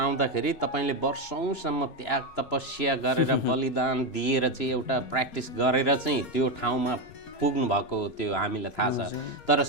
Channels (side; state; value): right; late; 4.2 ms